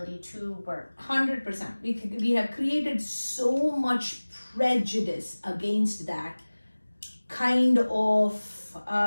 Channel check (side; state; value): both; inverted; correlation -1.00